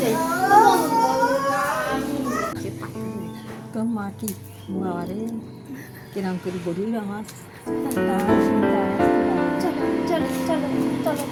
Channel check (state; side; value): identical; both; correlation 1.00